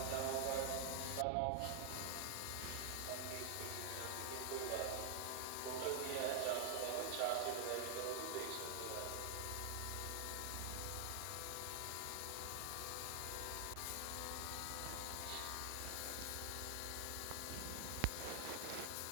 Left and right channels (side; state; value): both; different; correlation 0.00